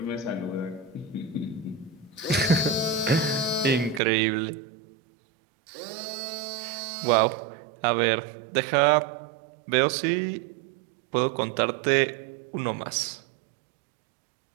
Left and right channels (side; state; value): left; drops out; at 4.0 s